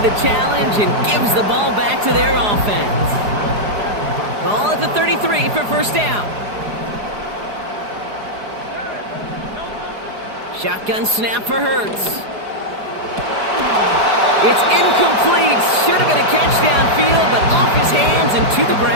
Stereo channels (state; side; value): late; left; 4.8 ms